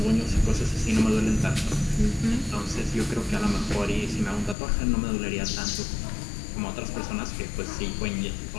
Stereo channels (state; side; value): drops out; right; at 4.5 s